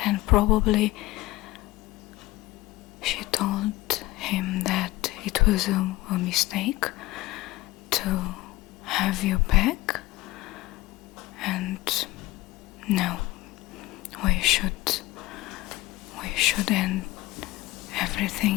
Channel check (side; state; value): right; quieter; 18.6 dB